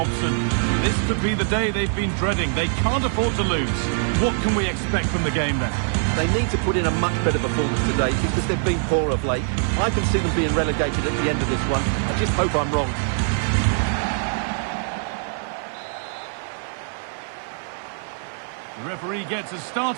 This could be the day they've been dreading. They can't afford to lose. What can we expect from the game then? They need to put in a much better performance today because they've been poor of late. I can see them being relegated at the end of this one. I just hope I'm wrong. The referee gets us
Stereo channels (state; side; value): silent; left; 63 dB below the other